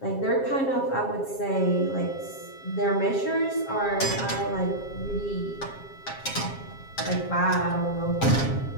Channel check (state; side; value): late; right; 7.4 ms